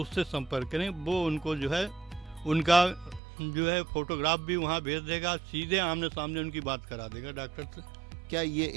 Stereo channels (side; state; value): left; drops out; at 3.2 s